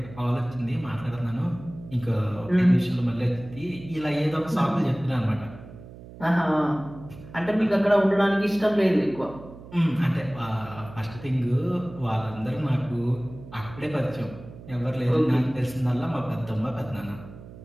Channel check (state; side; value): noise; right; hum, 16 dB below the sound